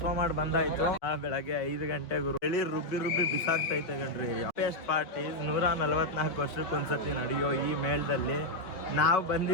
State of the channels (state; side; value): late; right; 4.6 ms